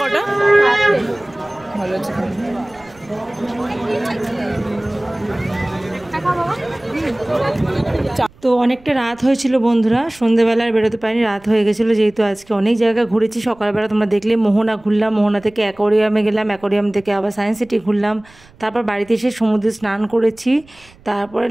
কটা? ভালো আছে। তো অনেকটা রাত হয়েছিল বন্ধুরা, সন্ধেবেলায় বেরোতে পারিনি, রাত হয়ে গেছিলো। যেহেতু আজকে অনেক জায়গা ঘুরেছি, সকালবেলা তোমরা দেখলে মোহনা ঘুরলাম, মোহনা থেকে অ্যাকোয়ারিয়ামে গেলাম, অ্যাকোয়ারিয়াম থেকে আবার সায়েন্স সিটি ঘুরলাম। তারপর বাড়িতে এসে সমুদ্রে স্নান করেছি। তারপরে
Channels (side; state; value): right; noise; rumble, 27 dB below the sound